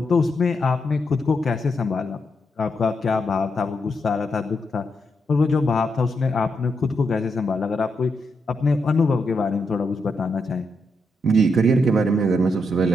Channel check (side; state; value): both; normal; correlation 0.82